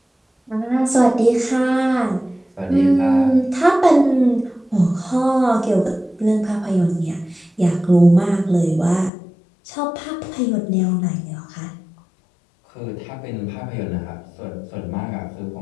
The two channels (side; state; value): right; drops out; at 9.1 s